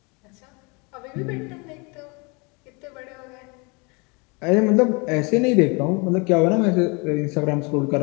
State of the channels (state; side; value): quieter; right; 29.8 dB